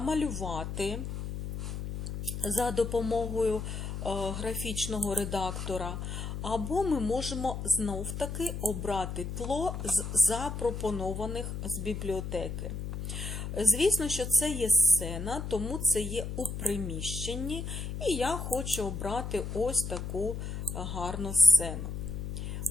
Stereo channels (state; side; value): noise; left; hum, 5 dB below the sound